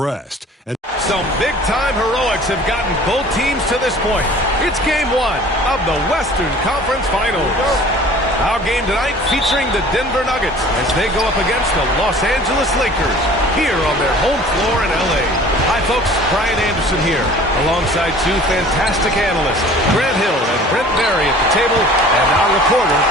and some big-time heroics have gotten both teams to this point. It's Game 1 of the Western Conference Finals. Our game tonight featuring the Denver Nuggets as they go up against the Los Angeles Lakers here on their home floor in L.A. Hi, folks. Brian Anderson here, alongside 2 fantastic analysts, Grant Hill and Brent Berry at the table, and our reporter,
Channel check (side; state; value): both; normal; correlation 0.47